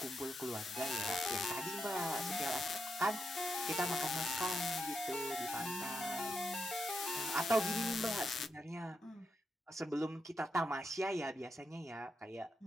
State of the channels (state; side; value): normal; both; correlation 0.84